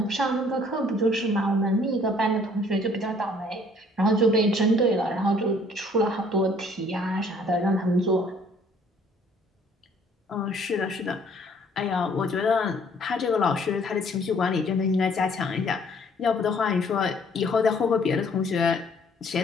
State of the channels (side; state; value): both; normal; correlation 0.59